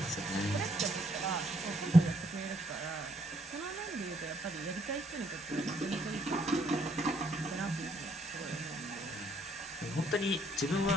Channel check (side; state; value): both; normal; correlation 0.69